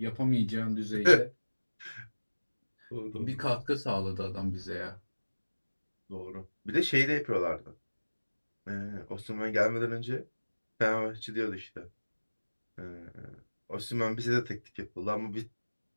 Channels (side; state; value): both; inverted; correlation -1.00